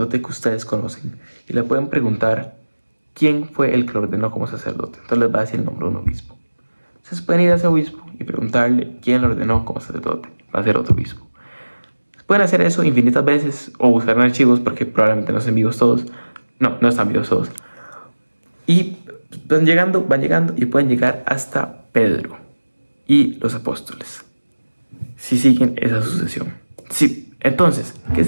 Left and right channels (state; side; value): inverted; both; correlation -1.00